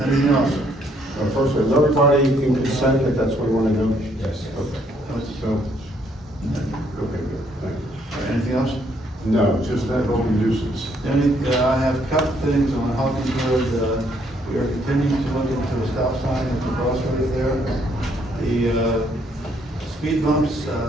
anything else? First, is everybody in consent if that's what you want to do? Yes. Okay. So, okay, good, thank you. All right, anything else? No, just that open nuisance. I have a couple things on Hawkins Road. We are continuing to look into a stop sign at the crossroads there. The speed bumps,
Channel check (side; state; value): both; normal; correlation 0.69